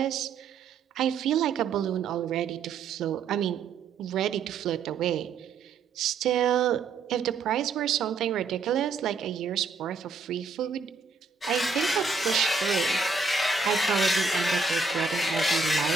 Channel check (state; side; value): quieter; left; 4.5 dB